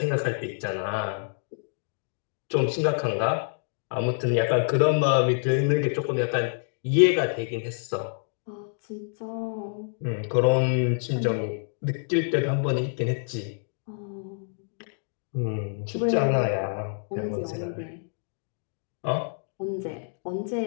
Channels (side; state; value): right; silent; digital silence